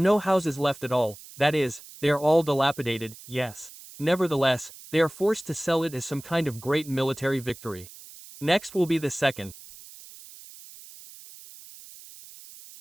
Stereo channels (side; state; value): right; noise; hiss, 18 dB below the sound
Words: houses left at all, that is, they are all dilapidated, yes. Nevertheless, they are forced to sell it as some kind of great military victory. Next will be the second.